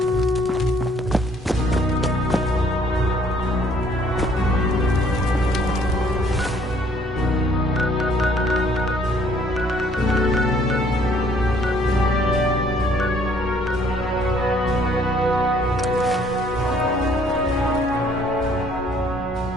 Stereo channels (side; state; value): both; normal; correlation 0.62